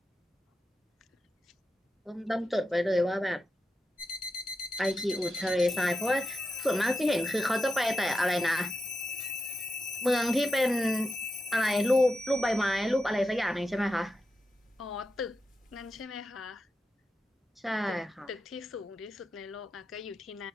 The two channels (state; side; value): normal; both; correlation 0.88